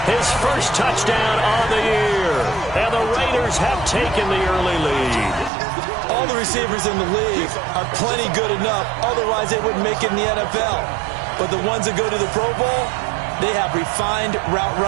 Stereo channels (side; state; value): left; drops out; at 5.5 s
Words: his first touchdown on the year. And the Raiders have taken the early lead. All the receivers in the league are plenty good enough. Otherwise, they wouldn't make it in the NFL. But the ones that go to the Pro Bowl, they have refined route